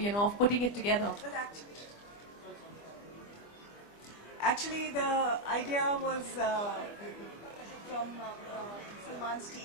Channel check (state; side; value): late; right; 25 ms